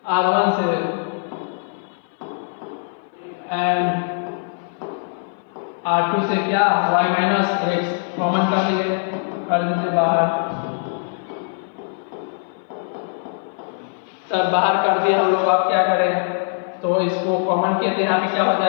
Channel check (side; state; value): right; silent; 59 dB below the other